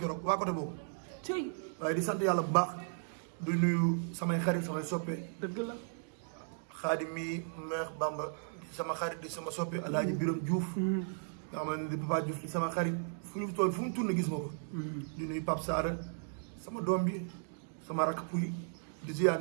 keroog waa côté boobu. waaye di sant yàlla bu baax du nuyu samay xarit samay soppe. dëgg la. Xaadim mi Meex Bamba di sama xarit di sama soppe Alaaji Biram Diouf. nga xam ne di Papa Diouf di sama xarit fu ñu toll fu mu tourné gis ma ko. di nuyu Pape Saara sama doom bi sama rakk puy di ziar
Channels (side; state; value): left; silent; digital silence